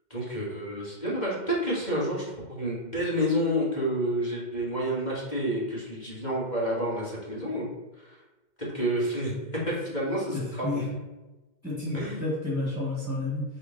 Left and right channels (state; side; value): late; right; 2.1 ms